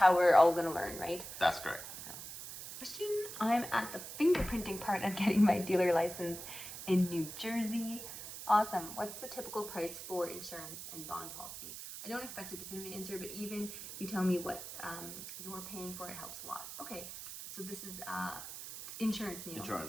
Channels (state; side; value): noise; right; hiss, 10 dB below the sound